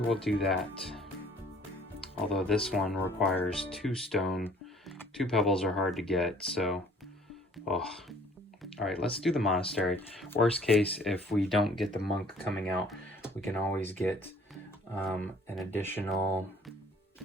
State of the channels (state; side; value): normal; both; correlation 0.56